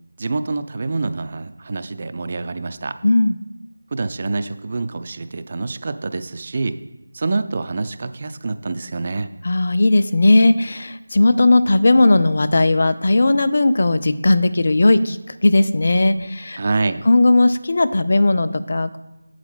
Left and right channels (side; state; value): both; inverted; correlation -0.97